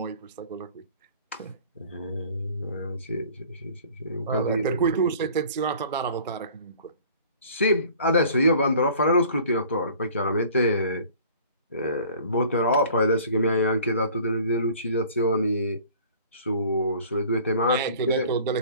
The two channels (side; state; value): both; inverted; correlation -0.49